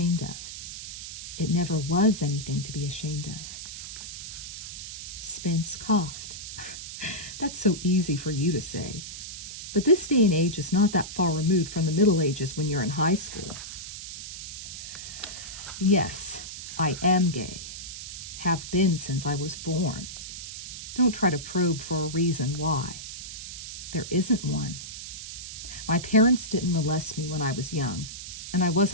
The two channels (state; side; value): noise; right; hiss, 9 dB below the sound